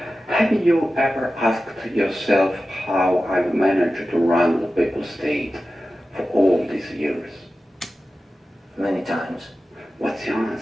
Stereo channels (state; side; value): normal; both; correlation 0.94